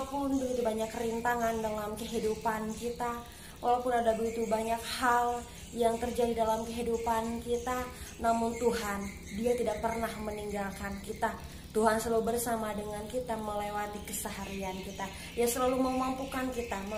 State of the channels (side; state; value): both; identical; correlation 1.00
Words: begitu banyak rintangan dalam kehidupan kita, walaupun ada begitu banyak hal yang terjadi dalam kehidupan kita, namun Tuhan, Dia tidak pernah meninggalkan kita. Tuhan selalu bersama dengan kita melewati keseharian kita. Dia selalu memampukan kita